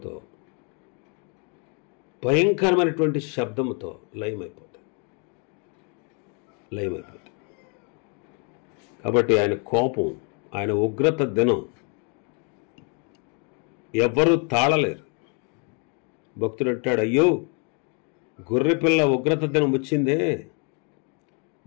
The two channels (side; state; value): right; quieter; 36.8 dB